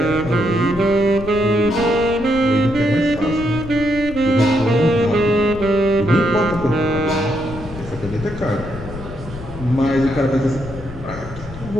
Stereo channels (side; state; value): left; noise; rumble, 12 dB below the sound